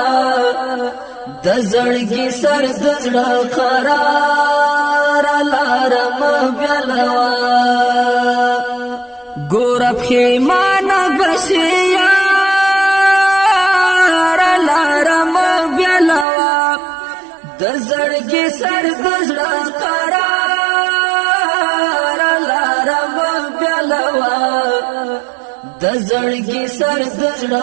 د زړګي سر د زړه قرار لارم بلوا ګورب خیمانه بشیار د زړګي سر د زړه قرار لارم بلوا د زړګي سر د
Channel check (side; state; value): left; drops out; at 16.2 s